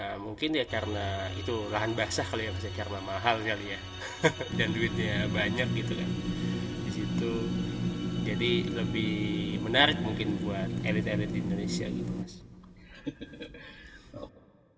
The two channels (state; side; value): identical; both; correlation 1.00